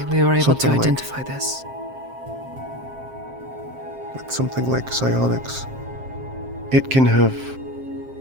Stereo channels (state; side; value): late; left; 7.6 ms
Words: we were able to identify this. With something like psionics, it can have,